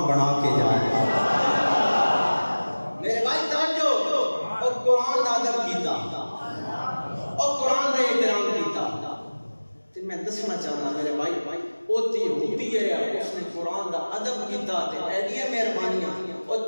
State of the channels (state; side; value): inverted; both; correlation -1.00